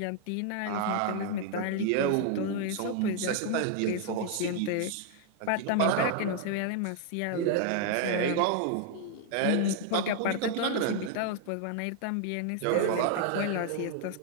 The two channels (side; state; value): both; different; correlation 0.00